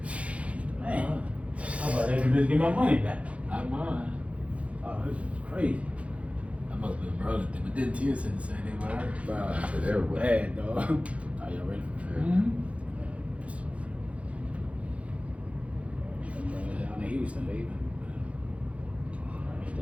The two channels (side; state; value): left; late; 0.063 ms